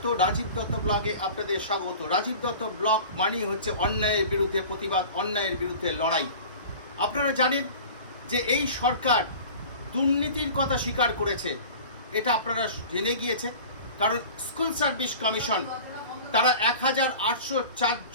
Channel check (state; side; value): inverted; both; correlation -0.40